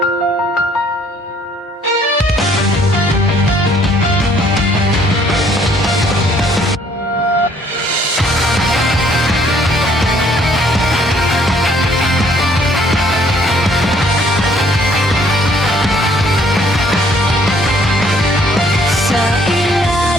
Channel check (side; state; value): both; normal; correlation 0.63